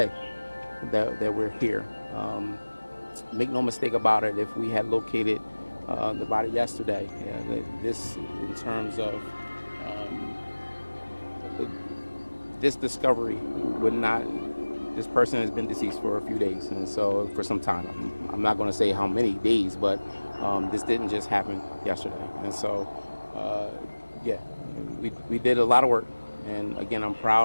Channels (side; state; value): both; inverted; correlation -1.00